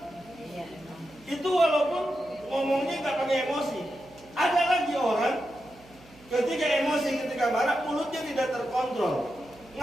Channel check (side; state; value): right; noise; hum, 24 dB below the sound